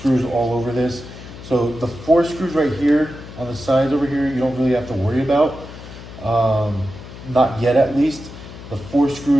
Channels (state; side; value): noise; left; hum, 14 dB below the sound